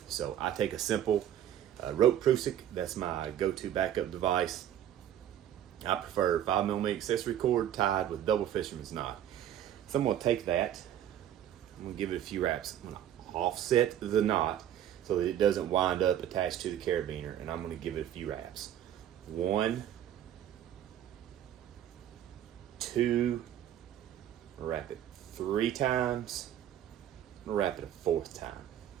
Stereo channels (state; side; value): quieter; left; 10.9 dB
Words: So I take a simple rope Prusik. That's my go-to backup device. I prefer 5mm accessory cord tied with double fisherman's knot. So I'm going to take that. I'm going to give it a few wraps. I'm going to offset the knot so that it doesn't wind up attached to the carabiner, and I'm going to give it a few wraps. 1, 2, wrap it 3 times, I'm going to wrap it a 4th time.